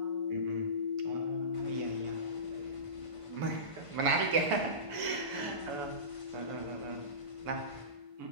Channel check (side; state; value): left; late; 1.5 ms